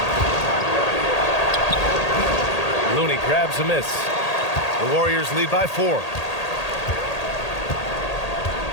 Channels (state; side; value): late; right; 1.8 ms